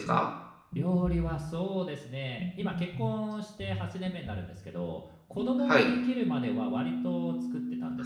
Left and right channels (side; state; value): both; identical; correlation 1.00